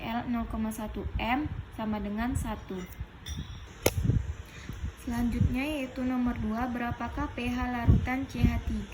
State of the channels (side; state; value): both; identical; correlation 1.00